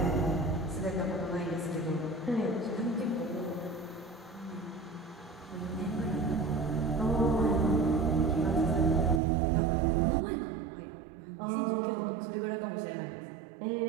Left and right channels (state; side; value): drops out; left; at 9.2 s